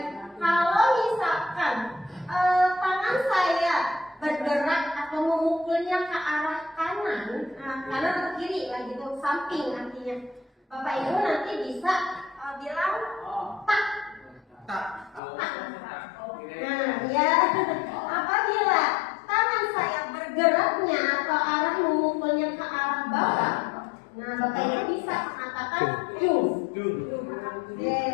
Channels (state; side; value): drops out; right; at 15.2 s